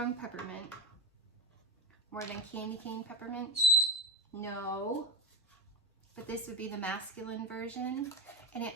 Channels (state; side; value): normal; both; correlation 0.15